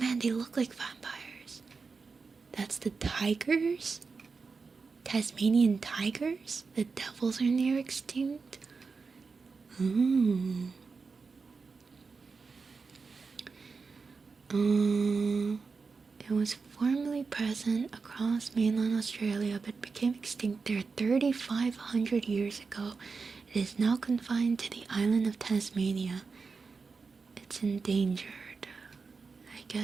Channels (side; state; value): left; quieter; 4.7 dB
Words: they look like vampires. That's the tigers? Tasmanian tigers? The devils are near extinct? Ooh. It was formerly present across mainland Australia but became extinct there 3,500 years ago. It is now confined to the island of Tasmania. It's endangered. I